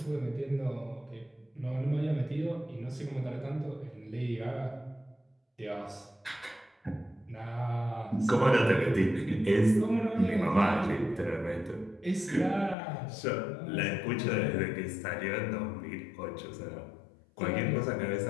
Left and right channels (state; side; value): drops out; right; at 12.8 s